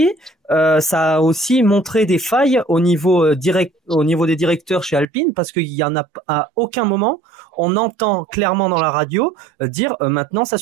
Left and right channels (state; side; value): drops out; left; at 5.1 s